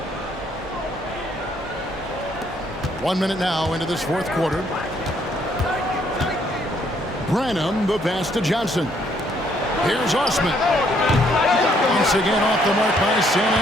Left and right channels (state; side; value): normal; both; correlation 0.68